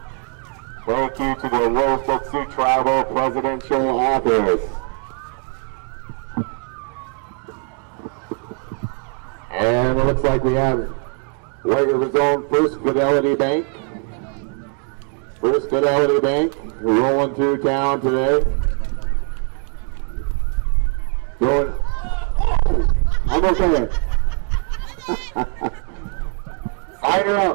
Thank you to the Rosebud Sioux Tribal Presidential Office. And it looks like we have White River's own First Fidelity Bank. First Fidelity Bank rolling through town today. Going. I'm okay. Sign her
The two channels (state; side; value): quieter; left; 38.1 dB